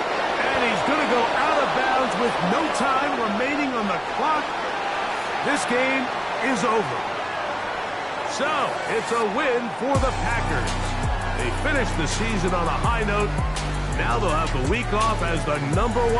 And he's going to go out of bounds with no time remaining on the clock. This game is over. So, it's a win for the Packers. They finished the season on a high note. Now they'll have the week off as the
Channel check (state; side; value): identical; both; correlation 1.00